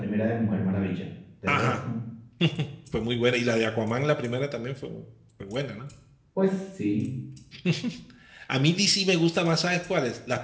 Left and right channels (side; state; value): both; identical; correlation 1.00